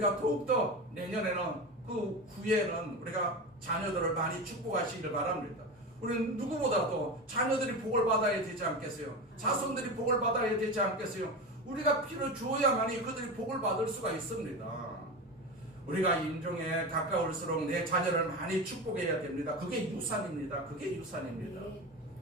더욱더 내년에는 그 후에는 우리가 자녀들을 많이 축복하시길 바랍니다. 우리는 누구보다도 자녀들이 복을 받아야 되지 않겠어요? 자손들이 복을 받아야 되지 않겠어요? 우리가 피를 주어야만이 그들이 복을 받을 수가 있습니다. 우리가 임종에 가까울수록 내 자녀를 많이 축복해야 됩니다. 그게 유산입니다. 그게 유산입니다.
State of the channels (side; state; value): both; normal; correlation 0.24